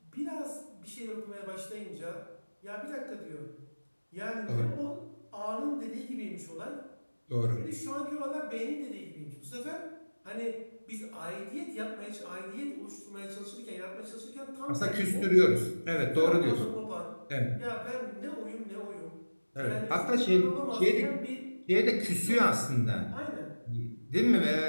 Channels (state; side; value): inverted; both; correlation -1.00